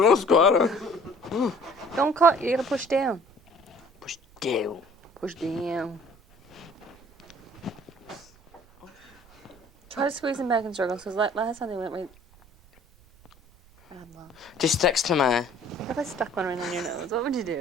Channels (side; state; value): right; noise; rumble, 27 dB below the sound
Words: no squatter. Don't cut. You gotta push down. Push down. Push down. Try to squeeze them back in circles because last time they went right. Just sticks to my. What if I stuck one right on your nose? What would you